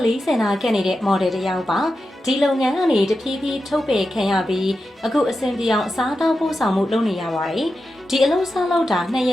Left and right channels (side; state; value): both; normal; correlation 0.90